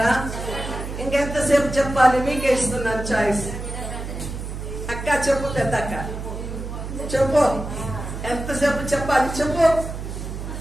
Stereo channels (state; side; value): noise; right; hum, 7 dB below the sound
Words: ఇంకెంతసేపు చెప్పాలి? మీకే ఇస్తున్నాను చాయిస్. అక్క చెప్పు, పెద్ద అక్క చెప్పు, ఎంతసేపు చెప్పాలి? చెప్పు.